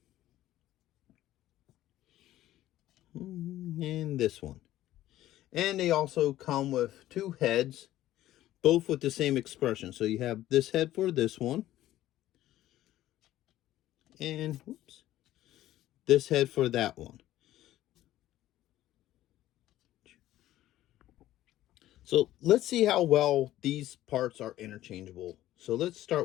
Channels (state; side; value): quieter; right; 14.2 dB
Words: And this one. And they also come with 2 heads, both with the same expression. So you have this head for this one. And whoops, this head for that one. So let's see how well these parts are interchangeable. So let's